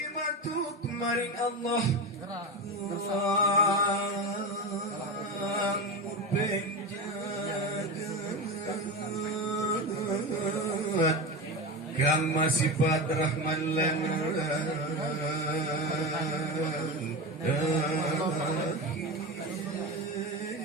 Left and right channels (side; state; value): both; normal; correlation 0.21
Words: matuk maring Allah murbeng jagat kang masifat rahman lan